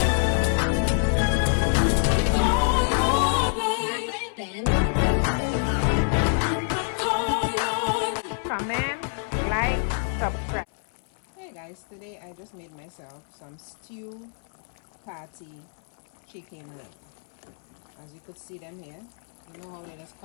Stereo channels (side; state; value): right; silent; 60 dB below the other